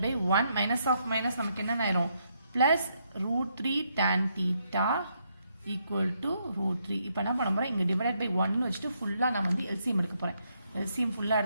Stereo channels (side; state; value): both; inverted; correlation -0.76